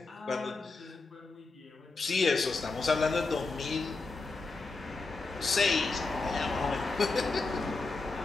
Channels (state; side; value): quieter; right; 3.8 dB